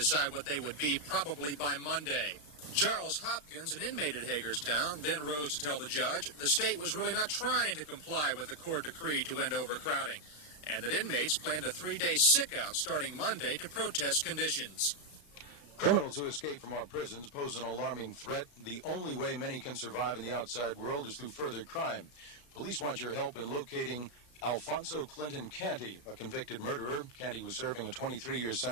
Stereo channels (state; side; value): late; right; 34 ms